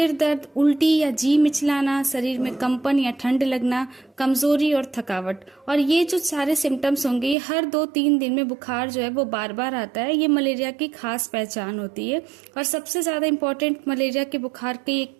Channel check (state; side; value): drops out; left; at 7.4 s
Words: दर्द, उल्टी या जी मिचलाना, शरीर में कंपन या ठंड लगना, कमजोरी और थकावट। और ये जो सारे सिम्टम्स होंगे, ये हर 2-3 दिन में बुखार जो है वो बार बार आता है। ये मलेरिया की खास पहचान होती है। और सबसे ज्यादा इम्पोर्टेंट मलेरिया के बुखार की एक